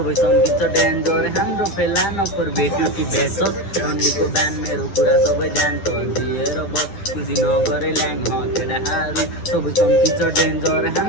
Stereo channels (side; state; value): right; late; 10 ms